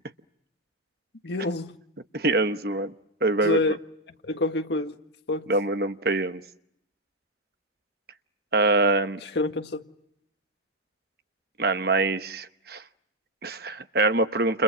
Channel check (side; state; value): both; normal; correlation 0.02